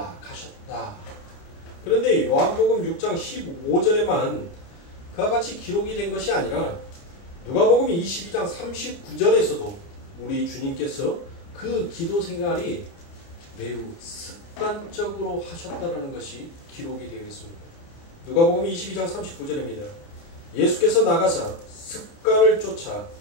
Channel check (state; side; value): late; right; 29 ms